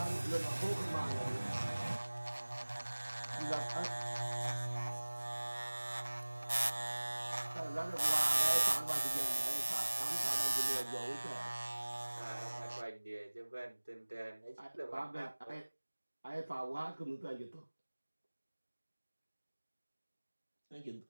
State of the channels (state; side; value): inverted; both; correlation -1.00